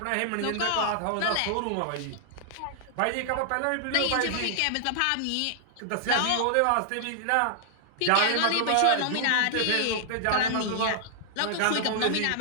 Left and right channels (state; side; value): different; both; correlation -0.01